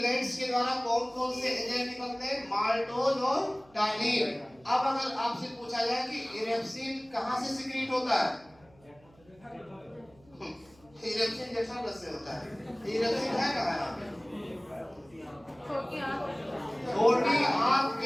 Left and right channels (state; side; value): noise; right; hum, 29 dB below the sound